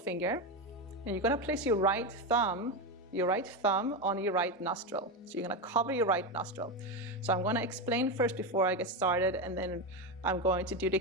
And you're going to place your right thumb on your right nostril. So you're going to cover your right nostril. So I'm going to explain first before I get started, and then I'm going to do the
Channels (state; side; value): normal; both; correlation 0.13